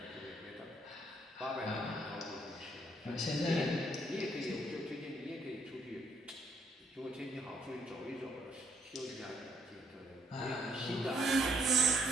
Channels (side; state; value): both; normal; correlation 0.71